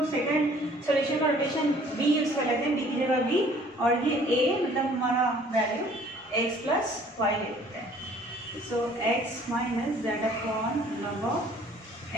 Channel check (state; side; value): normal; both; correlation 0.55